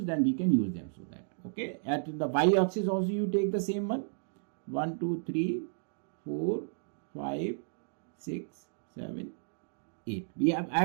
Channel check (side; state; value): left; silent; digital silence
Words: then we can use them. So that, okay, at the y axis also you take the same one. 1, 2, 3, 4, 5, 6, 7, 8. I